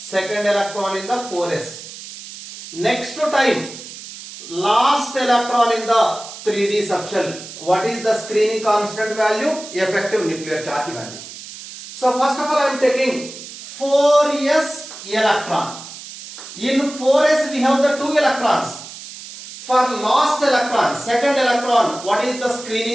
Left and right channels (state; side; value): noise; right; hiss, 13 dB below the sound